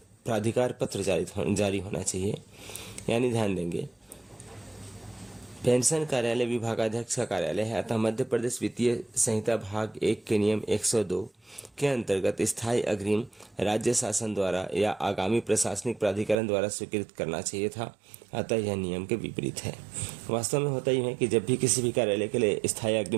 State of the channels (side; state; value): left; drops out; at 16.4 s